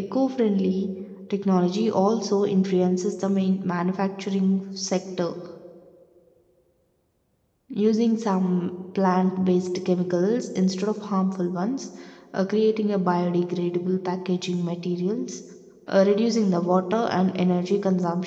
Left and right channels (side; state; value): both; identical; correlation 1.00